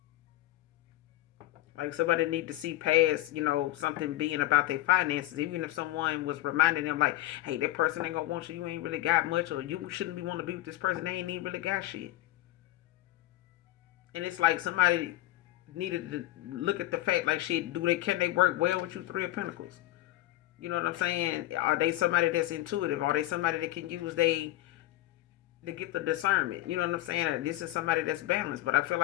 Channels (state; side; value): quieter; right; 16.5 dB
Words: like somebody need to see past, something being about their finances. Even if someone was reminding them like, hey, that person ain't gonna want you, you ain't really got much, or you shouldn't be want to be with this person, they ain't even really got shit. And it's like somebody needed to look at the fact like shit, can they work well with you, Three of Pentacles? You know what I'm saying? Are they somebody that's intuitive? Are they somebody that can use they to get the discernment? You know what I'm saying? This is somebody that's balanced. But I feel